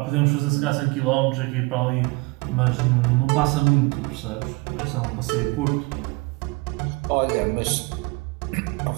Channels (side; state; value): left; quieter; 26.0 dB